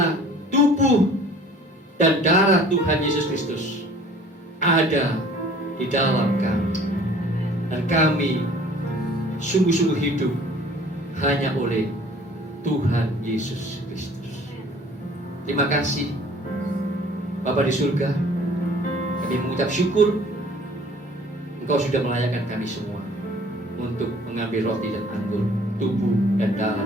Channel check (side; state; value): both; normal; correlation 0.51